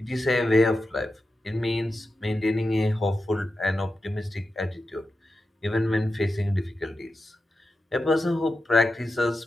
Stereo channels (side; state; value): both; normal; correlation 0.90